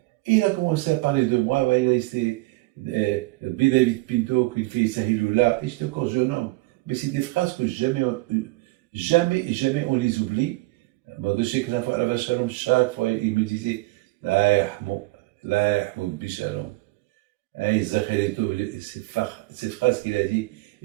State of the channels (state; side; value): quieter; left; 22.2 dB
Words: il a commencé à parler de moi, il a laissé David Pinto qui fait Sahilullah, et j'étais encore jeune homme. Mais c'est des phrases que jamais on les oublie. Je sais que chaque fois, il me disait La yahmoud bishalom. Ces phrases qu'il a dit,